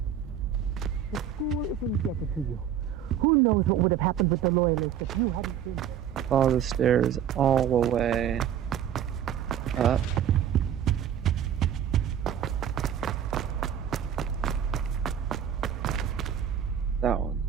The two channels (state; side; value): quieter; left; 9.3 dB